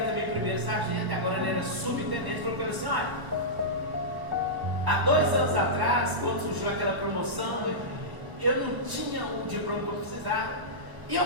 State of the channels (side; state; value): left; late; 1.2 ms